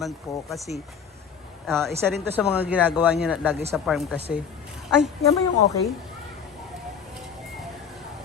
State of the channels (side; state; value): right; quieter; 7.0 dB